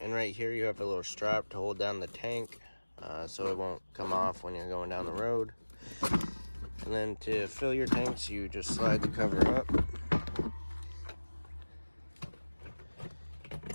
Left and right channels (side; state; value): both; inverted; correlation -1.00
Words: And right here you have a little strap to hold down the tank so it won't come off when you're going down the road. And then to fill your tanks, you just slide the cover up.